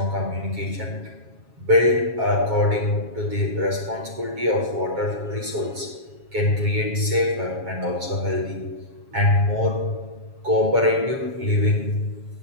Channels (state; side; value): late; left; 7.3 ms